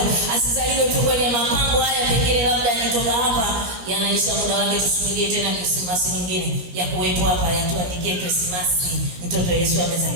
Asizaliwe tu kwenye mapambo haya, pengine labda yanatoka hapa yanaisha muda wake, tusubirie tena Krismasi nyingine ya kuwepo hapa, yatuandikie Krismasi mtoto Yesu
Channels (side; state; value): left; late; 17 ms